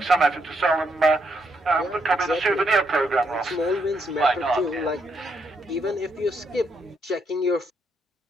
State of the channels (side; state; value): both; normal; correlation 0.77